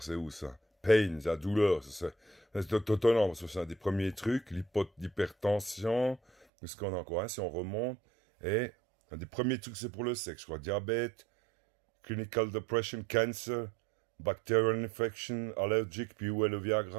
c'est où ça? Pain, la douleur, c'est étonnant, parce que c'est un des premiers trucs. L'hypertension, qu'est-ce qu'on a encore, hein, si on remonte. Et un des premiers trucs, c'est pour le sexe, je crois. Diabète, clinical depression, cancer, bacterial infection, allergic, puis où est le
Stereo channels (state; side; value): drops out; left; at 6.5 s